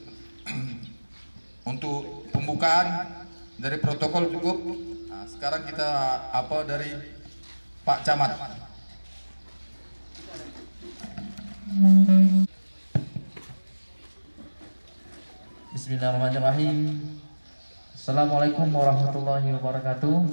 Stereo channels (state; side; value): inverted; both; correlation -1.00